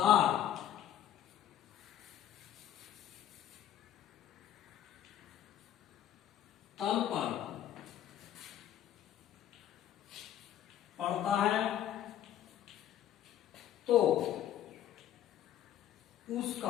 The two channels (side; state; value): right; quieter; 11.2 dB